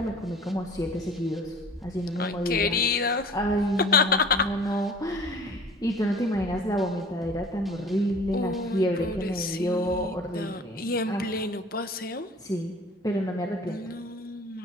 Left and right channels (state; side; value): normal; both; correlation 0.45